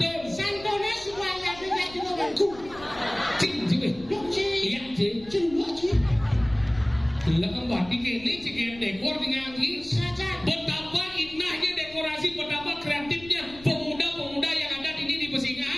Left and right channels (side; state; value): left; noise; rumble, 20 dB below the sound